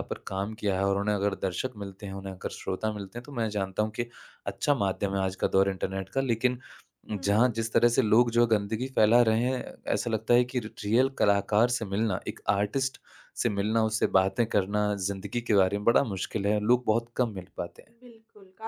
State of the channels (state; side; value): identical; both; correlation 1.00